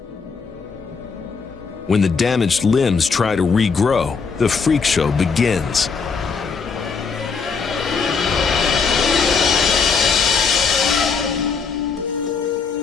When the damaged limbs try to regrow, the freak show begins.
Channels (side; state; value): right; quieter; 5.3 dB